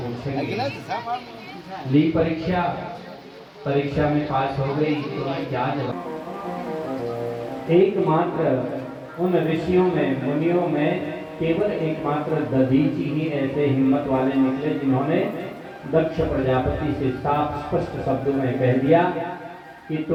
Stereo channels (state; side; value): identical; both; correlation 1.00